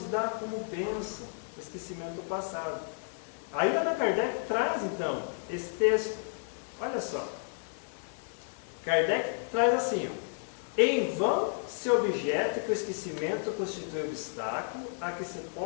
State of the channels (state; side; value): silent; right; digital silence